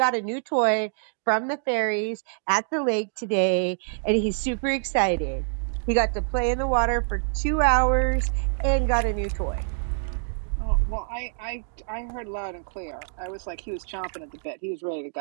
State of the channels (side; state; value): left; silent; digital silence